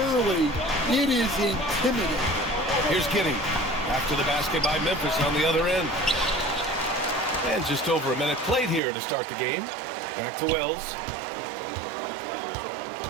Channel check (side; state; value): left; drops out; at 8.8 s